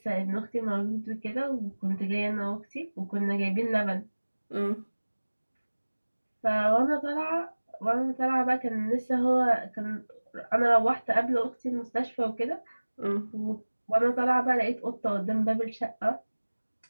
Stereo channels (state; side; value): inverted; both; correlation -1.00